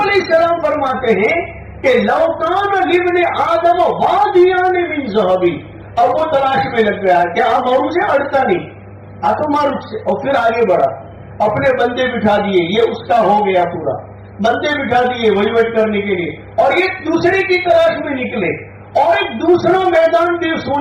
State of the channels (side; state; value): both; identical; correlation 1.00